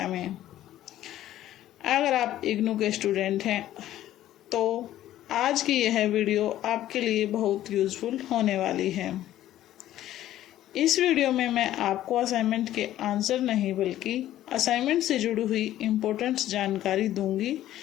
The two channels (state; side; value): quieter; right; 13.2 dB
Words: में। अगर आप इग्नू के स्टूडेंट हैं तो आज की यह वीडियो आपके लिए बहुत यूज़फुल होने वाली है। इस वीडियो में मैं आपको असाइनमेंट के आंसर नहीं बल्कि असाइनमेंट से जुड़ी हुई इम्पोर्टेंट जानकारी दूंगी